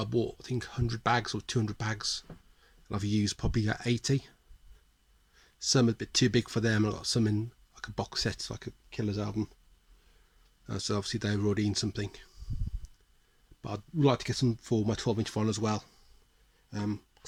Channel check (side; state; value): both; identical; correlation 1.00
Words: I bought, I think, 100 bags or 200 bags, and I've used probably 80. Some are a bit too big for them. I got some in like a box set, like a Killers album. So obviously they were already in something. But I'd like to get some for my 12-inch vinyl as well.